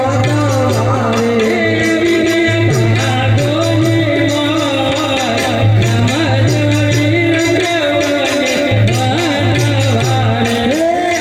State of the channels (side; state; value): both; identical; correlation 1.00